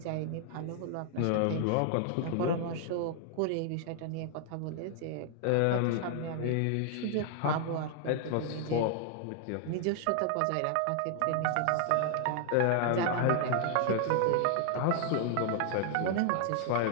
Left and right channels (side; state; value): both; different; correlation 0.00